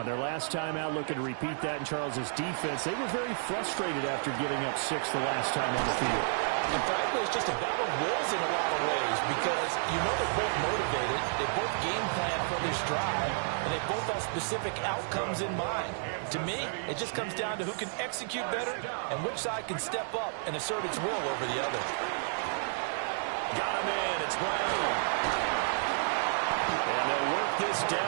their last time out, looking to repeat that in Charles's defense. They were very frustrated after giving up 6 the last time on the field. And frankly, it's just a battle of wills in a lot of ways because you know they're both motivated, they both game plan for this drive, and they both have specific outcomes in mind. To me, it just comes down to who can execute better and which side can step up and assert its will over the other. Got him in. It's Brown. And they'll work this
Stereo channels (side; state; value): left; silent; 57 dB below the other